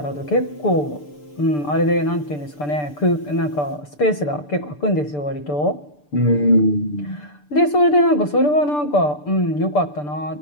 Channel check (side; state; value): right; late; 6.8 ms